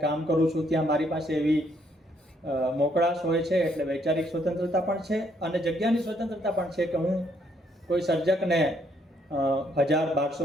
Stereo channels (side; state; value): both; normal; correlation 0.70